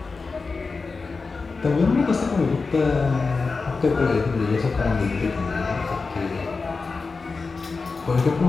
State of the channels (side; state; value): right; quieter; 4.3 dB